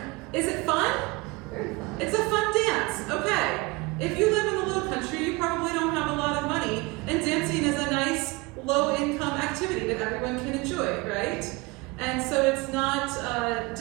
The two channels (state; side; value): quieter; left; 24.6 dB